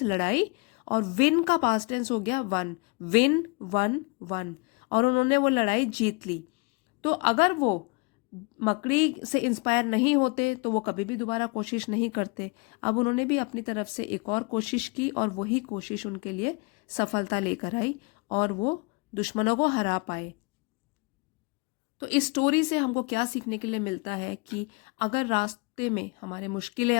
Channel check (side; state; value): right; quieter; 29.5 dB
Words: लड़ाई, और विन का पास्ट टेंस हो गया वन, विन वन वन, और उन्होंने वो लड़ाई जीत ली। तो अगर वो मकड़ी से इंस्पायर नहीं होते तो वो कभी भी दोबारा कोशिश नहीं करते। अब उन्होंने भी अपनी तरफ से एक और कोशिश की, और वही कोशिश उनके लिए सफलता लेकर आई, और वो दुश्मनों को हरा पाए। तो इस स्टोरी से हमको क्या सीखने के लिए मिलता है कि अगर रास्ते में हमारे मुश्किलें